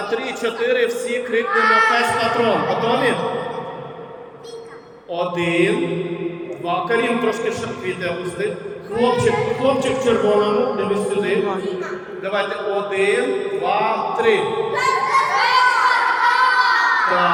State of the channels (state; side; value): identical; both; correlation 1.00